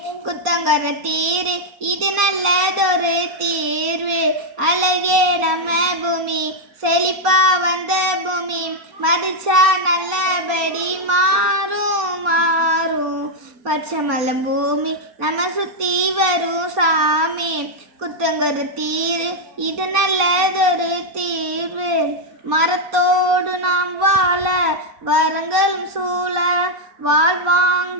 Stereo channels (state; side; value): late; left; 4.2 ms